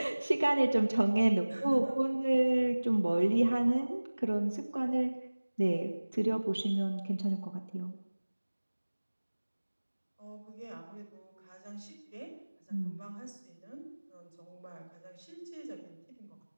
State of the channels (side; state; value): both; inverted; correlation -1.00